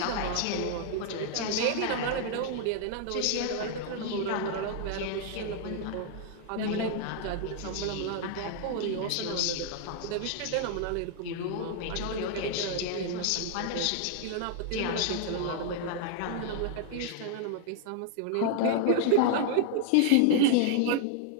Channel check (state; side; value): different; both; correlation -0.01